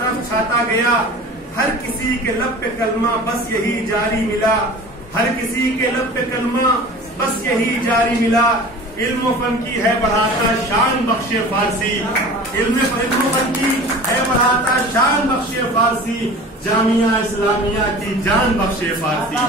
چھاتا گیا، ہر کسی کے لب پہ کلمہ بس یہی جاری ملا، ہر کسی کے لب پہ کلمہ بس یہی جاری ملا، علم و فن کی ہے بڑھاتا شان بخش فارسی، علم و فن کی ہے بڑھاتا شان بخش فارسی، جامعہ اسلامیہ کی جان بخش فارسی،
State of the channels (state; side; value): normal; both; correlation 0.40